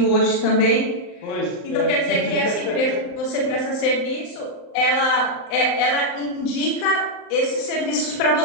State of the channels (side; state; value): right; late; 39 ms